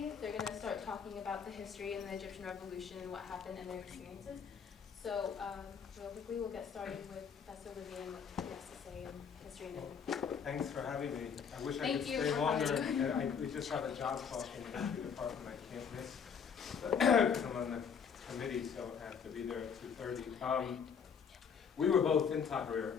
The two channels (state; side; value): quieter; right; 6.8 dB